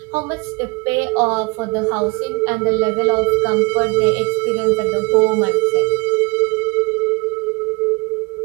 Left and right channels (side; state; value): left; quieter; 27.3 dB